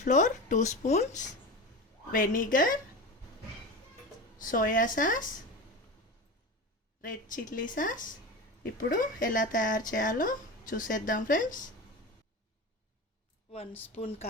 2 spoons, vinegar, soya sauce, red chilli sauce. ఇప్పుడు ఎలా తయారు చేయాలో చూసేద్దాం ఫ్రెండ్స్. 1 స్పూన్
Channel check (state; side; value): normal; both; correlation 0.27